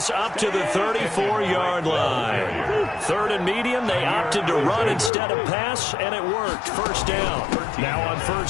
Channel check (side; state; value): right; drops out; at 5.1 s